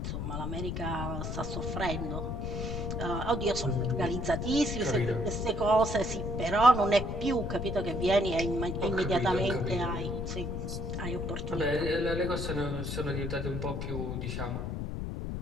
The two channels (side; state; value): left; noise; rumble, 3 dB below the sound